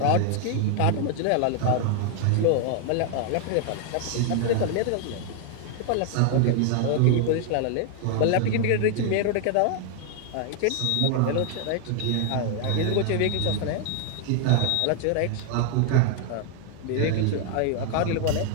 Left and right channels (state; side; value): different; both; correlation 0.00